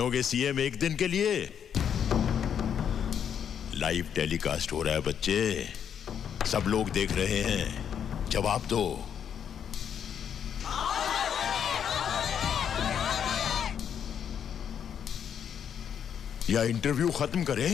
सीएम एक दिन के लिए? लाइव टेलीकास्ट हो रहा है बच्चे, सब लोग देख रहे हैं, जवाब दो। या इंटरव्यू खत्म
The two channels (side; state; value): right; quieter; 8.3 dB